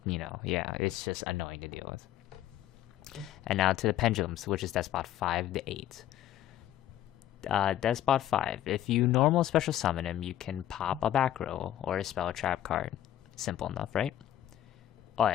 it's just annoying to deal with. And now to the Pendulums, which is Despot 5 to 8. Despot 5, if you normal special summon him, you can pop a back row or a spell trap card. Simple enough, right? Oh,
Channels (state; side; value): quieter; right; 12.2 dB